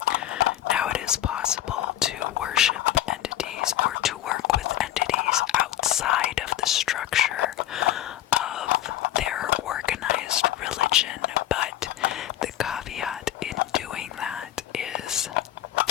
Now, it is possible to worship entities or to work with entities outside of the structure of their organized religion, but the caveat in doing that is,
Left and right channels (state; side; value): quieter; right; 12.9 dB